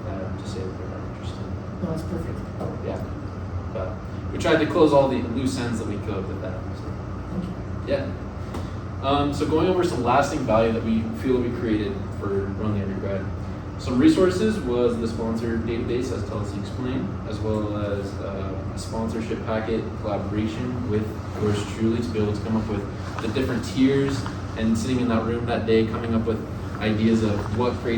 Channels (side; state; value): both; identical; correlation 1.00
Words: that to say that they're not interested. No, that's perfect. Yeah, but we tried to close all the loose ends that we could with that. So. Thank you. Yeah. So going over some lasting value that we feel we created for Run the Undergrad. Some resources was the sponsor database, as Kelsey explained, as well as a sponsorship packet collaboration with yours truly to be able to come up with the different tiers and sitting in that room that day coming up with ideas of what